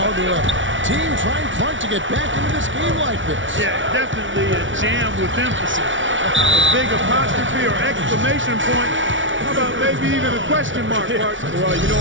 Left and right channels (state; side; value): late; left; 0.56 ms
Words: to a team trying Clark to get back into this game like this. Yeah, definitely a jam with emphasis. A big apostrophe or exclamation point. How about maybe even a question mark, Mark? Well, you know